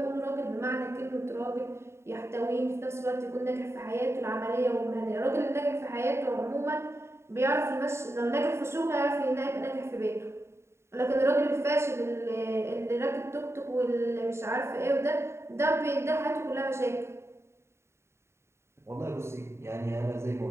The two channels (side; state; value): left; late; 0.13 ms